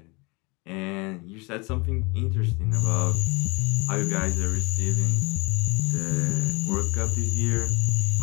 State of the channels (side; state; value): right; quieter; 27.5 dB